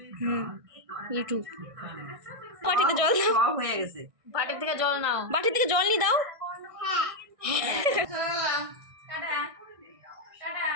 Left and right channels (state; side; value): late; left; 1.6 ms